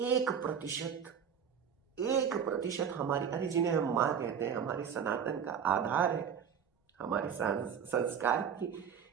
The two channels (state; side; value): quieter; left; 7.7 dB